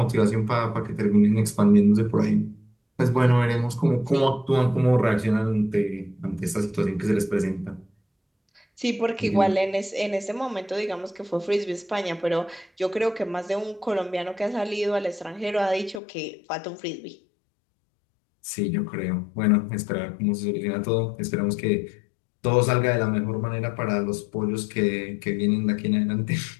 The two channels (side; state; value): right; drops out; at 16.0 s